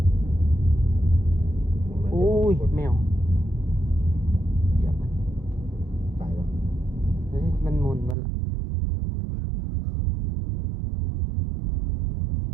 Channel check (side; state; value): left; drops out; at 8.2 s